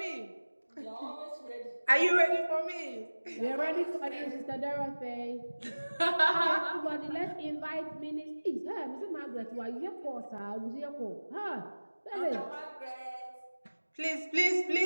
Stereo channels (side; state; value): both; inverted; correlation -1.00